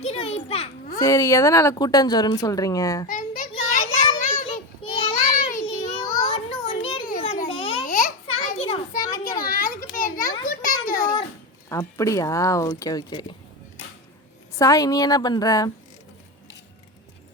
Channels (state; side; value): normal; both; correlation 0.17